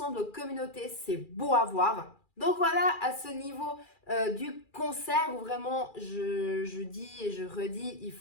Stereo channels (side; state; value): right; late; 2.4 ms